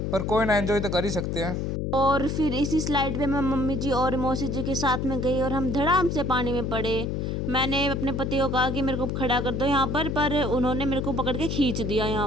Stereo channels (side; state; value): left; noise; hum, 1 dB below the sound